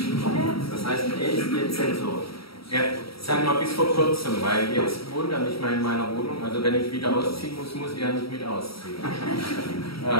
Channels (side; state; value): right; late; 0.75 ms